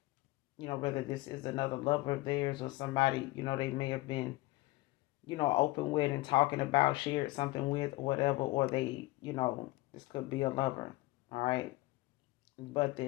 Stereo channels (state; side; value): quieter; right; 19.7 dB